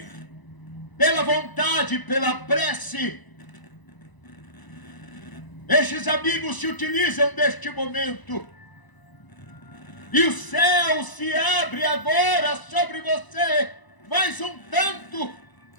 pela vontade, pela prece, estes amigos se utilizam deste momento. E o céu se abre agora sobre você, mais um tanto.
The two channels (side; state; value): right; late; 1.0 ms